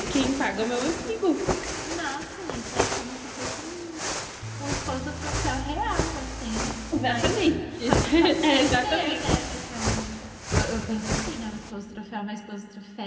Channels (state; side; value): identical; both; correlation 1.00